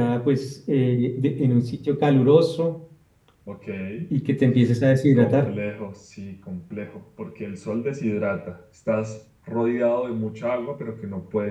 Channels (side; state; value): both; identical; correlation 1.00